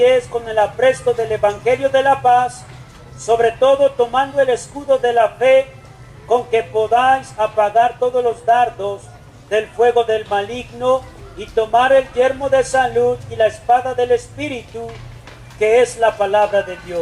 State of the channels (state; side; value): identical; both; correlation 1.00